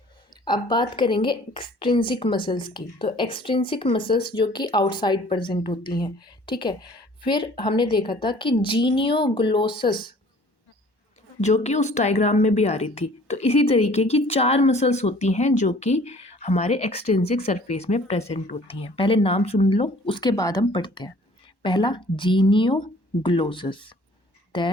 अब बात करेंगे एक्सट्रिंसिक मसल्स की। तो एक्सट्रिंसिक मसल्स जो कि आउटसाइड प्रेजेंट होती हैं। ठीक है, फिर हमने देखा था कि जीनियोग्लोसस जो कि उस डायग्राम में भी आ रही थी। तो इसी तरीके की 4 मसल्स होती हैं जो कि हमारे एक्सट्रिंसिक सरफेस में प्रेजेंट होती हैं। पहले नाम सुन लो, उसके बाद हम पढ़ते हैं। पहला जीनियोग्लोसस,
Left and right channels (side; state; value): right; late; 1.1 ms